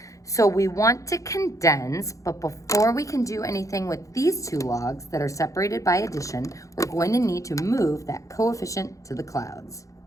So we want to condense, but before we can do anything with these two logs that are separated by addition, we're going to need to move that coefficient to the clouds.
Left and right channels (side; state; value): right; late; 0.16 ms